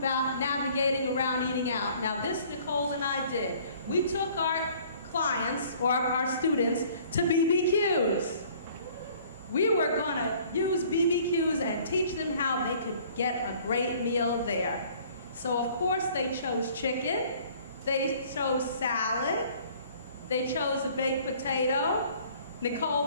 navigating around eating out. Now this Nicole and I did. We took our clients or our students to BBQs. We were going to use BBQs and teach them how they could get a great meal there. So of course they chose chicken, they chose salad, they chose a baked potato.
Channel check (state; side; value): inverted; both; correlation -0.55